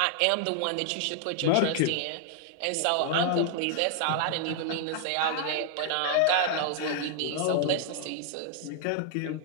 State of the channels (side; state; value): both; different; correlation -0.01